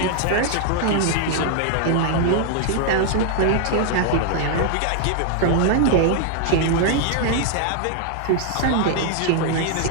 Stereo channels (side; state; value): both; different; correlation 0.00